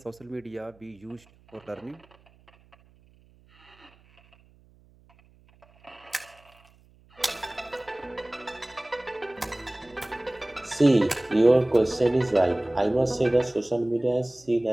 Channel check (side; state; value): right; noise; hum, 29 dB below the sound